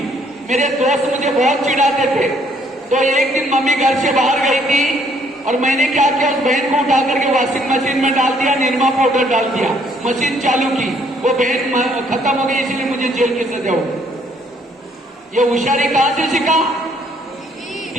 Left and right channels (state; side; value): normal; both; correlation 0.65